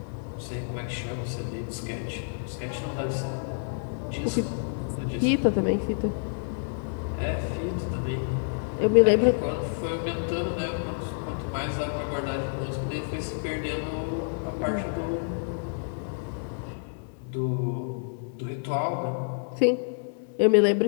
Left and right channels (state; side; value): silent; right; 59 dB below the other